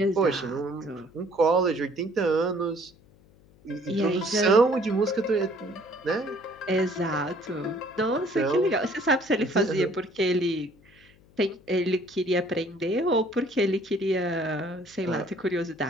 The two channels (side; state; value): left; noise; hum, 28 dB below the sound